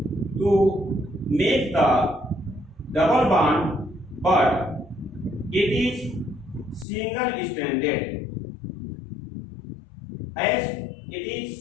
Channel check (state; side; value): drops out; right; at 6.9 s